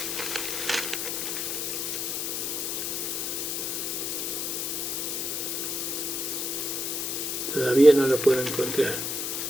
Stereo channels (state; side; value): noise; left; hiss, 1 dB below the sound